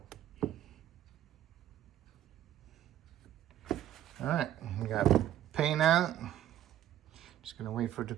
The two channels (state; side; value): quieter; left; 11.9 dB